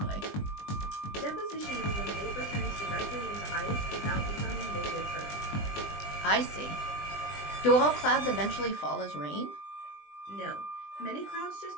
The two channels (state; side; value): late; right; 20 ms